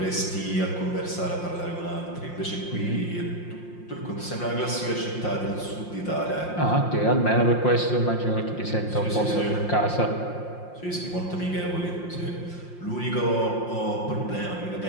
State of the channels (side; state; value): right; late; 5.7 ms